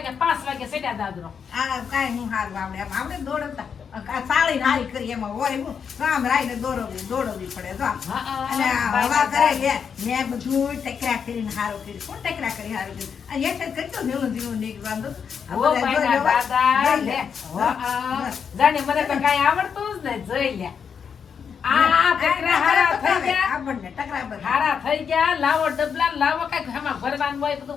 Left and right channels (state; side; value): quieter; right; 6.9 dB